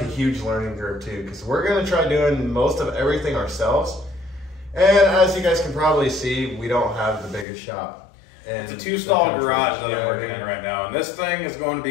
a huge learning curve too, because we're going to try doing most of everything ourselves. And as you guys can probably see, we don't have the biggest shop. It's a 2-stall garage that I'm working in right now, and this thing is going to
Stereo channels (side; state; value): right; drops out; at 7.5 s